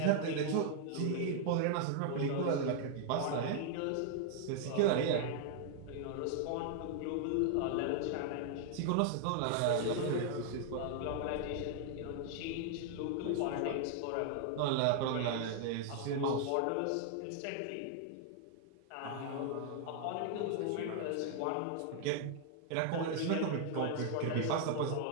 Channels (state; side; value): different; both; correlation 0.00